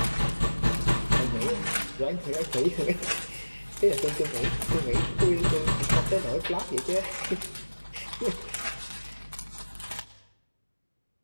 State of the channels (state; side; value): inverted; both; correlation -1.00